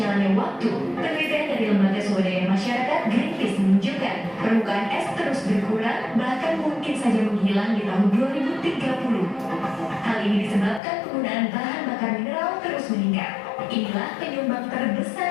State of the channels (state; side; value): drops out; right; at 10.8 s